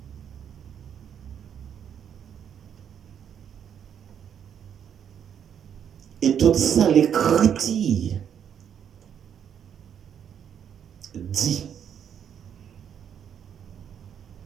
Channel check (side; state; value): left; quieter; 8.6 dB